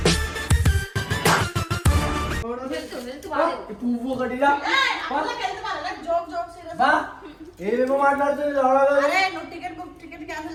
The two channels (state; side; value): identical; both; correlation 1.00